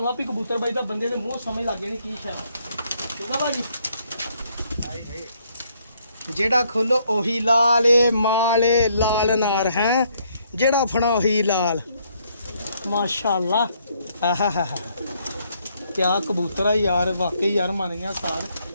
ਆਪੀ ਕਬੂਤਰ ਬਾਈ ਦਾ ਬੰਦੇ ਦੇ ਮੂੰਹ ਸਮਝ ਲੱਗ ਜਾਣੀ ਕੀ ਸ਼ਾਇਦ। ਠੀਕ ਆ ਭਾਜੀ। ਜਿਹੜਾ ਖੋਲੋ ਉਹੀ ਲਾਲ ਮਾਲੇ ਲਾਲ ਨਾਰ ਹੈ। ਜਿਹੜਾ ਫੜਾ ਉਹੀ ਲਾਲ ਮਾਸ਼ਾਅੱਲਾ। ਆਹਾ ਕਿਆ ਕਬੂਤਰ ਆ ਯਾਰ। ਵਾਕਈ ਯਾਰ ਮੰਨ ਗਿਆ ਸਾਰ।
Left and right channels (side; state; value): both; inverted; correlation -0.70